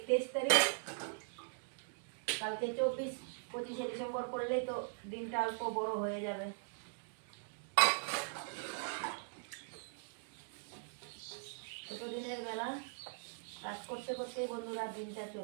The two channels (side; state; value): left; silent; digital silence